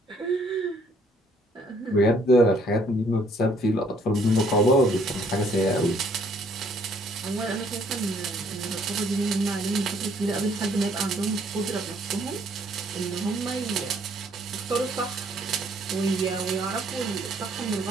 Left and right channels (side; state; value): both; normal; correlation 0.64